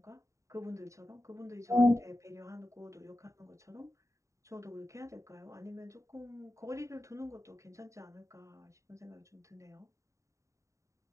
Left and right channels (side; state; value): left; late; 0.15 ms